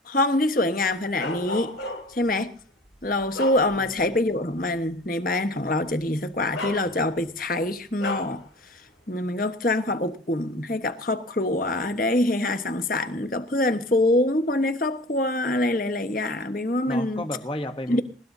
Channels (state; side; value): normal; both; correlation 0.42